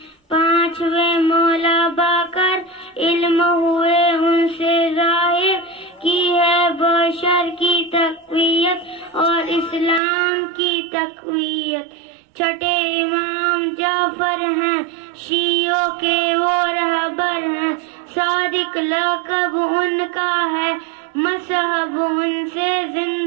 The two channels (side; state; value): left; drops out; at 10.0 s